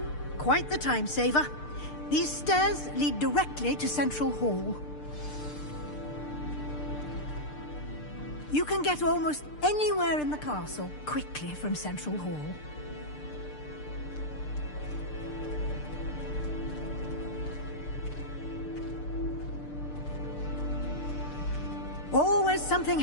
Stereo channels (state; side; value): late; right; 6.7 ms